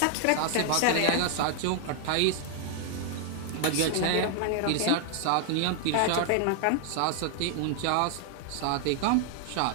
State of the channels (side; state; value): both; different; correlation 0.00